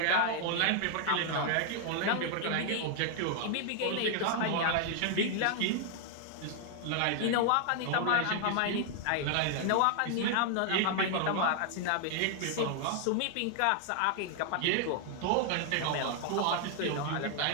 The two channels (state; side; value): different; both; correlation 0.00